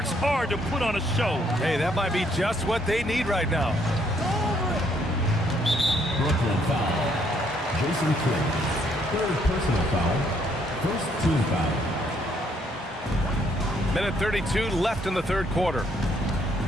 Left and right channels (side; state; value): both; normal; correlation 0.69